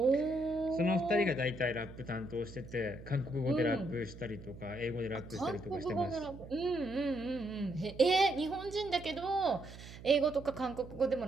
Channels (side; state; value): right; noise; hum, 15 dB below the sound